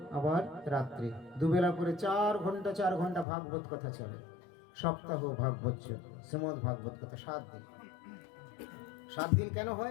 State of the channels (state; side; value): drops out; right; at 3.2 s